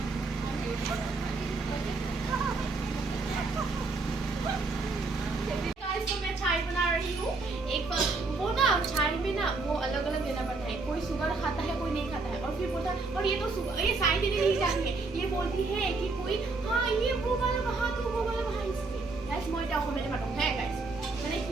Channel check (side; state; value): left; quieter; 3.8 dB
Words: तो मैं चाय बना रही हूँ। एक वो ना चाय में ना वो अलग अलग देना पड़ता है, कोई शुगर खाता है कोई नहीं खाता है। और फिर बोलता है और ये तो ये साई देने नहीं चाहिए, ये बोलती है कि कोई हाँ ये वो वाला वहाँ तो वो वाला वहाँ इसलिए गाइस मैं এটা অসমীয়াতে পাতো হ্যাঁ গাইস মানে